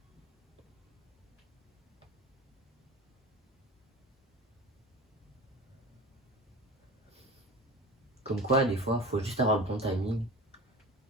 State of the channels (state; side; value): normal; both; correlation 0.33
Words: Comme quoi, des fois, faut juste avoir le bon timing.